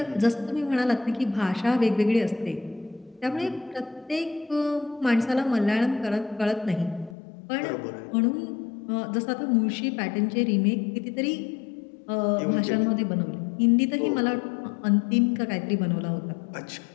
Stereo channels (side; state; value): right; drops out; at 7.2 s